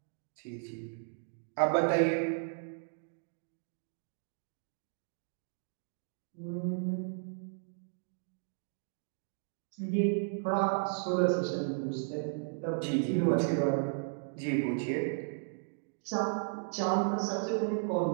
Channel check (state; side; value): silent; left; digital silence